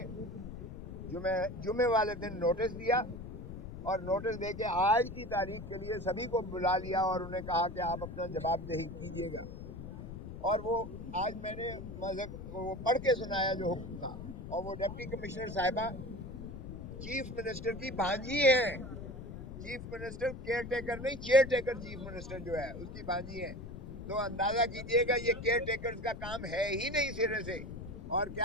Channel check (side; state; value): left; noise; rumble, 10 dB below the sound